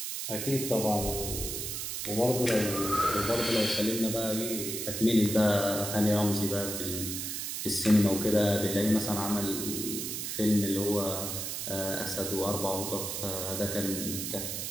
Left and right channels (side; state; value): right; noise; hiss, 4 dB below the sound